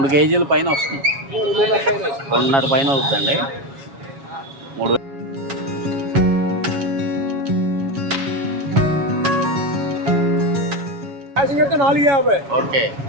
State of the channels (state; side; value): late; left; 7.2 ms